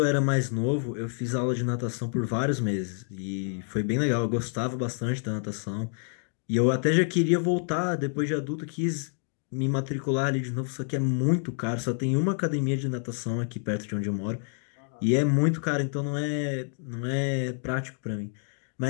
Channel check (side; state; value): right; silent; 59 dB below the other